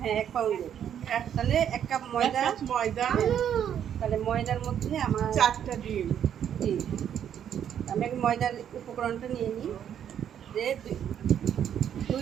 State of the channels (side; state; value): left; quieter; 9.4 dB